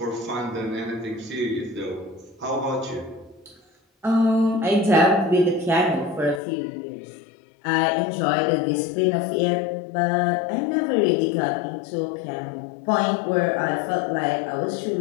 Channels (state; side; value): drops out; right; at 6.4 s